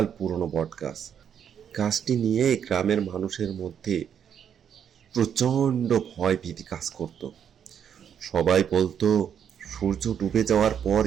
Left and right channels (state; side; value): quieter; left; 8.4 dB